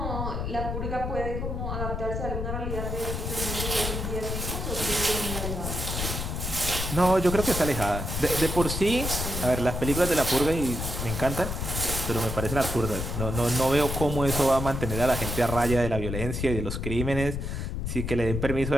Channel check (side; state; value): left; noise; rumble, 3 dB below the sound